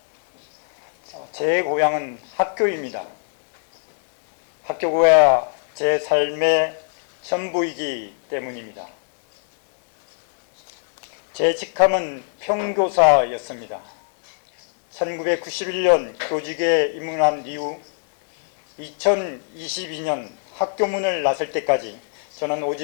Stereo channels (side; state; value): right; silent; digital silence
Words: 제 고향은 학교입니다. 학교가 제 삶의 전부이기 때문입니다. 제 직함은 평교사였습니다. 1991년 교직에 입문한 이후 2022년 학교문을 나설 때까지 저는